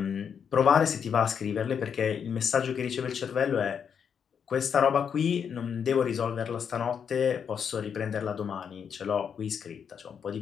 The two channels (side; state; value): right; quieter; 7.3 dB